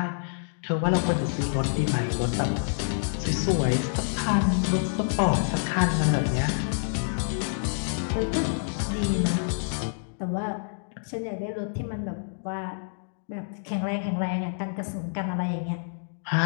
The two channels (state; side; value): silent; right; digital silence